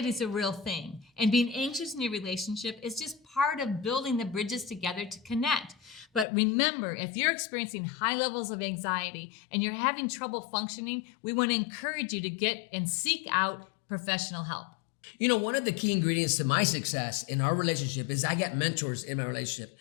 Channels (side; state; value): right; drops out; at 6.2 s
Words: is a real thing, and being anxious in your relationship is just part of building the bridges together to connect. But remember, if you're experiencing high levels of anxiety and you're having trouble functioning, we want to encourage you to get and seek out professional help. You know, one of the key ingredients to my success in our relationship is I got mentors in my relationship.